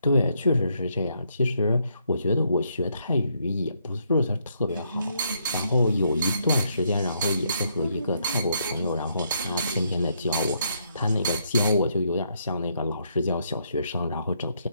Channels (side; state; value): both; inverted; correlation -0.74